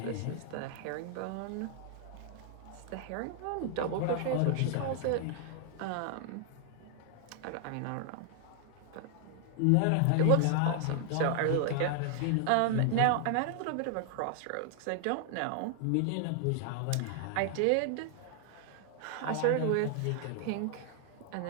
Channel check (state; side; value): different; both; correlation 0.00